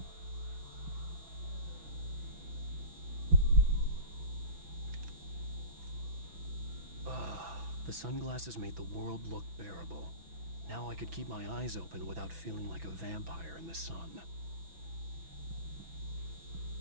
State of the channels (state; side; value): late; left; 6.0 ms